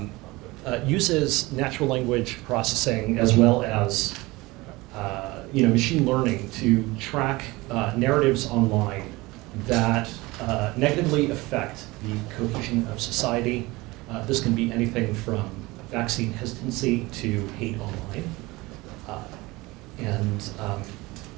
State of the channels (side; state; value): left; quieter; 21.7 dB